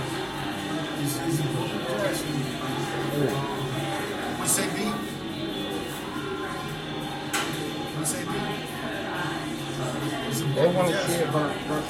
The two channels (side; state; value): both; identical; correlation 1.00